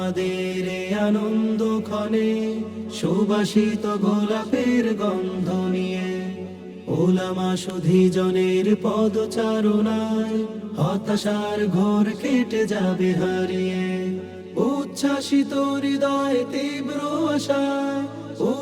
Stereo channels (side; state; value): both; identical; correlation 1.00